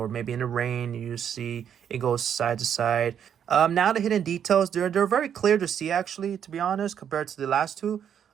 maybe in the rain, you see it goes side to side. Now the hidden details, they're very clear to see actually, to be honest, compared to the last two.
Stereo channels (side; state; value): left; quieter; 8.7 dB